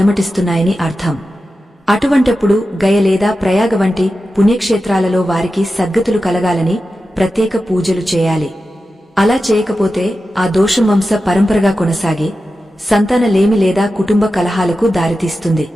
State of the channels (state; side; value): normal; both; correlation 0.92